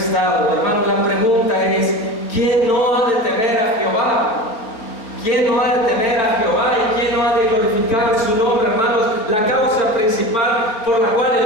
Hermano, la pregunta es: ¿quién no ha de temer a Jehová? ¿Quién no ha de temer a Jehová y quién no ha de glorificar su nombre? Hermanos, la causa principal por la cual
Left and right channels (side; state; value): right; late; 4.4 ms